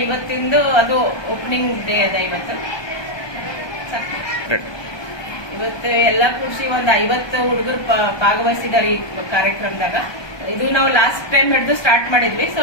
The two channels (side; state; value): right; late; 1.2 ms